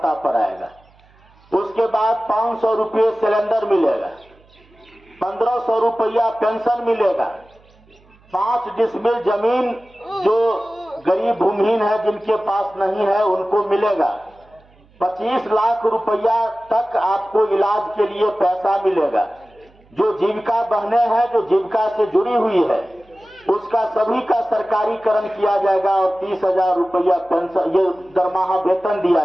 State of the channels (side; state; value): right; noise; hum, 30 dB below the sound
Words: पर आएगा। उसके बाद 500 रुपये सिलेंडर मिलेगा, 1500 रुपया पेंशन मिलेगा, 5 डिसमिल जमीन जो गरीब भूमिहीन है जिनके पास नहीं है उनको मिलेगा, 25 लाख रुपया तक आपको इलाज के लिए पैसा मिलेगा। जो जीविका बहने हैं जो जीविका से जुड़ी हुई है उसका सभी का सरकारीकरण किया जाएगा और 30,000 रुपया पेंशन ये दरमाहा वेतन दिया